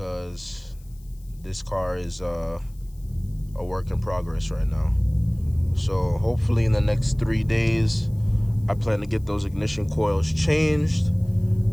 this car is a work in progress right now. So hopefully in the next 3 days, I plan to get those ignition coils changed,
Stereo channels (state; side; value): noise; left; hiss, 29 dB below the sound